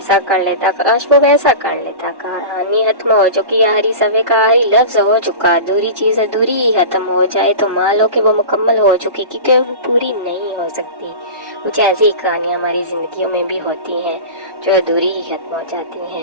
कर लेता, काश वो वैसा कर लेता। कहानी खत्म हो चुकी, आखिरी सफ़े का आखिरी लफ्ज़ हो चुका। अधूरी चीज़ अधूरी ही खत्म हो जाए तो मान लो कि वो मुकम्मल हो चुकी, क्योंकि वो पूरी नहीं हो सकती। कुछ ऐसी कहानियाँ हमारी ज़िंदगियों में भी होती हैं जो अधूरी ही खत्म हो जाती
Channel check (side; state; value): left; late; 1.1 ms